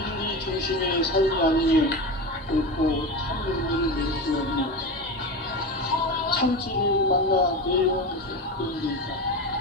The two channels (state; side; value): normal; both; correlation 0.23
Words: 중심의 삶이 아니면 결코 참 용기를 낼 수 없는 참지를 만나 내려오면서 되는 데